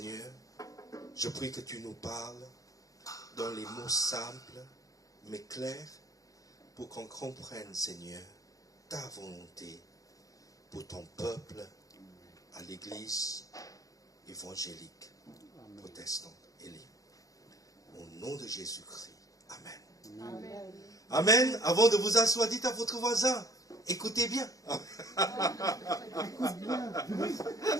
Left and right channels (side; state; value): right; late; 0.17 ms